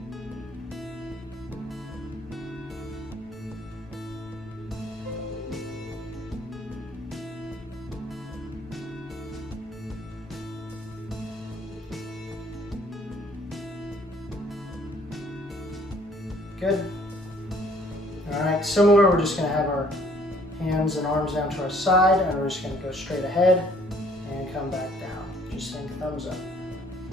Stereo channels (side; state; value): both; normal; correlation 0.60